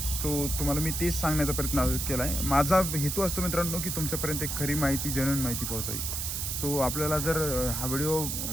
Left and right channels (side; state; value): right; noise; hiss, 2 dB below the sound